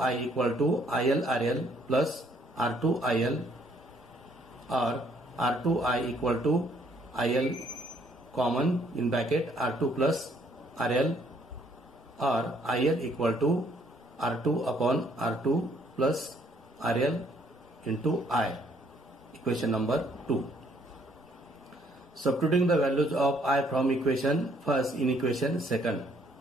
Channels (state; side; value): normal; both; correlation 0.66